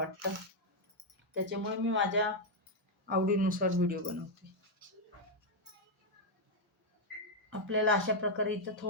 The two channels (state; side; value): normal; both; correlation -0.01